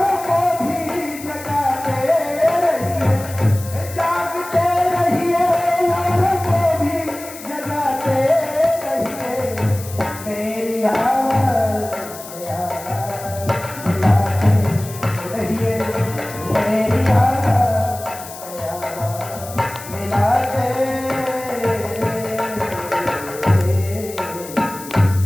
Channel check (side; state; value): left; noise; hiss, 14 dB below the sound